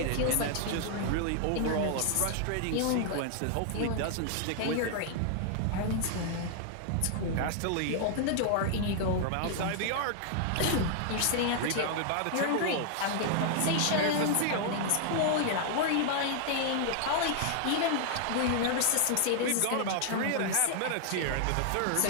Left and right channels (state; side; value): different; both; correlation 0.00